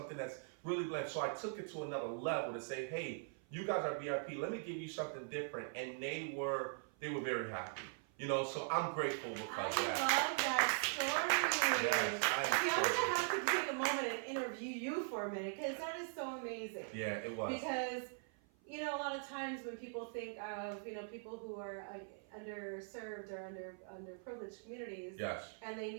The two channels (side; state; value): left; silent; 50 dB below the other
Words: that's really bland. So I took it to another level to say, hey, you guys are VIP. Let me give you something different. And they were very happy. So I'm grateful because of that. I love that story. Yes, I'm gonna have to take a moment and interview you for a minute because that is so amazing. Yeah, it was. Because a lot of times when people think of people who are underserved or underprivileged communities, Yes. and they